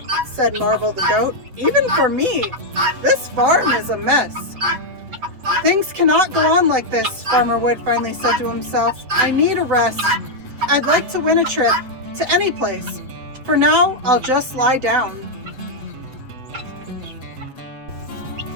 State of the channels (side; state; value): left; late; 7.9 ms